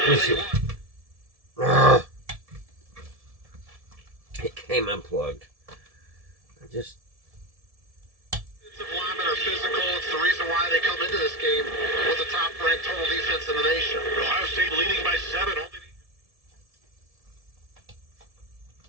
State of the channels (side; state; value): left; late; 1.7 ms